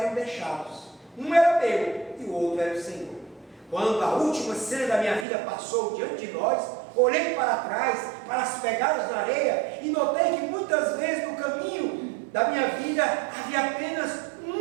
deixados. Um era meu e o outro era o Senhor. Quando a última cena da minha vida passou diante de nós, olhei para trás, para as pegadas na areia e notei que muitas vezes no caminho da minha vida havia apenas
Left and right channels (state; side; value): drops out; left; at 5.2 s